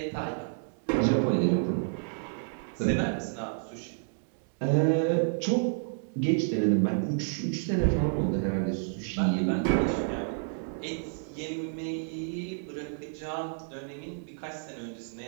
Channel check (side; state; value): left; silent; digital silence